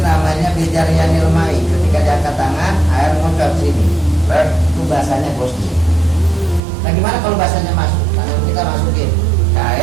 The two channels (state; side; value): drops out; left; at 6.6 s